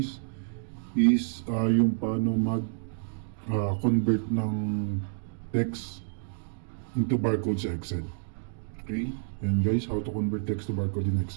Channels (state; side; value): silent; left; digital silence